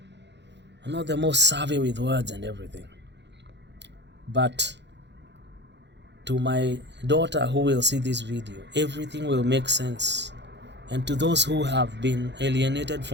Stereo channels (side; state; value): left; late; 0.51 ms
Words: I'm not the most savvy with words and everything. But to my daughter who will see this video, everything will make sense. And to those who have been alienated